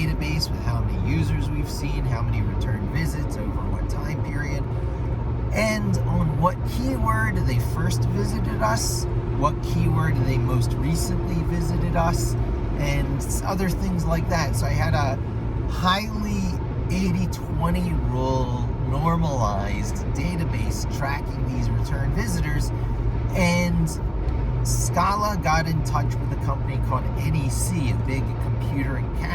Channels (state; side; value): identical; both; correlation 1.00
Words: with how many users we've seen, how many return visits over what time period, and on what keyword they first visited us, what keyword they most recently visited us, and other things like that. So I had a highly 80-20 rule normalized database tracking these return visitors, And Scala got in touch with a company called NEC, a big computer and